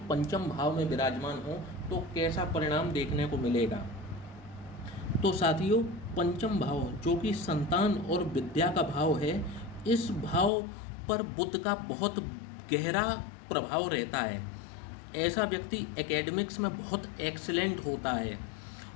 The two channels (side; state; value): right; drops out; at 10.5 s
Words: पंचम भाव में विराजमान हो तो कैसा परिणाम देखने को मिलेगा। तो साथियों, पंचम भाव जो कि संतान और विद्या का भाव है, इस भाव पर बुध का बहुत गहरा प्रभाव रहता है। ऐसा व्यक्ति एकेडमिक्स में बहुत एक्सीलेंट होता है